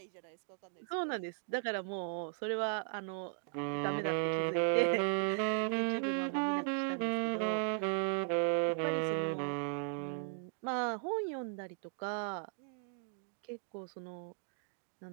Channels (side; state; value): left; silent; 53 dB below the other